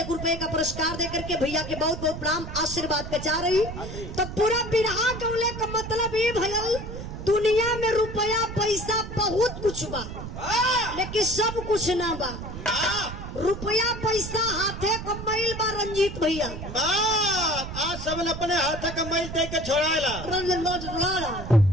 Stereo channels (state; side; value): noise; right; rumble, 9 dB below the sound